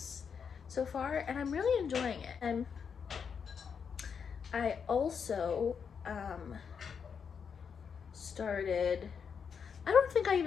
so far, and I'm really enjoying it. And I also started, I don't think I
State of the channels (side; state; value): right; quieter; 6.6 dB